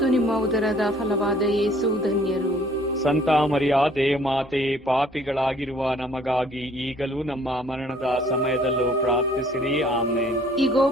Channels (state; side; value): normal; both; correlation 0.58